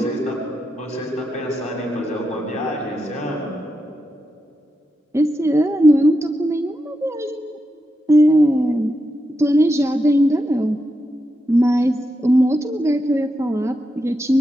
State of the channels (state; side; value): normal; both; correlation 0.86